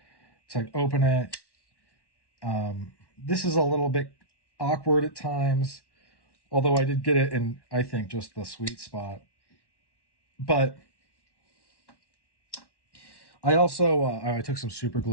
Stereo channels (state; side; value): late; right; 1.1 ms